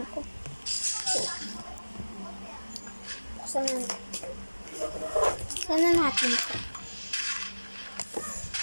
ko. So, sana natin ito.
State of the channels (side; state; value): both; inverted; correlation -1.00